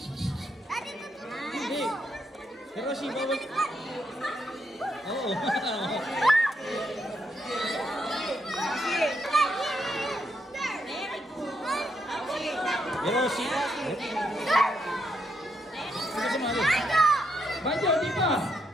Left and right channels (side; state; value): both; normal; correlation 0.78